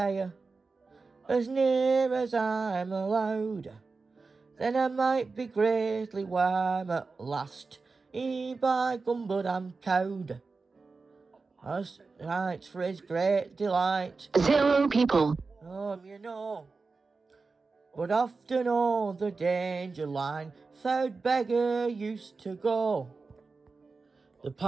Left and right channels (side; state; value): left; quieter; 4.2 dB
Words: as near as I'm allowed. Then I might be greatly warm at last. By gum, but I'm cowed. As right for his great delight. 0 people, You know. But often o'er the danger line, third beggar used to go. The